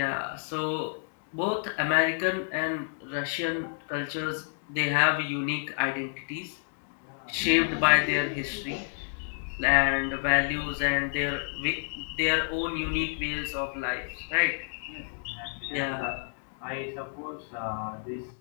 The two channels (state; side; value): silent; right; digital silence